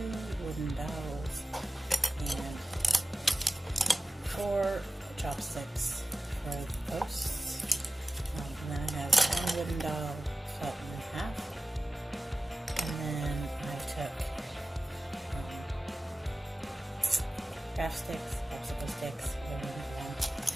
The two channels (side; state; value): both; normal; correlation 0.95